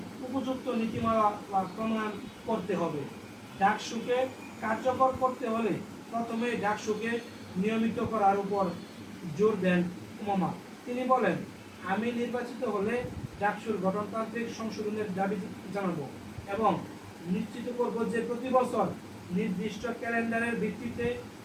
উপযুক্ত নীতিমালা প্রণয়ন করতে হবে। ডাকসুকে কার্যকর করতে হলে প্রথমে ডাকসুকে নিয়মিত করার উপর জোর দেন উমামা। তিনি বলেন, আমি নির্বাচিত হলে ডাকসুর গঠনতান্ত্রিক সংশোধনের দাবি জানাবো এবং নিশ্চিত করব যে প্রতি বছর নির্দিষ্ট ক্যালেন্ডারের ভিত্তিতে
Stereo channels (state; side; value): identical; both; correlation 1.00